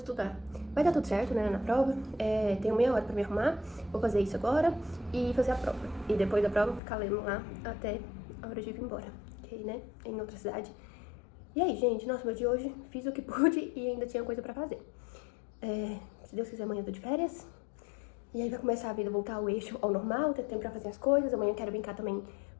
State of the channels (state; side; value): drops out; right; at 6.8 s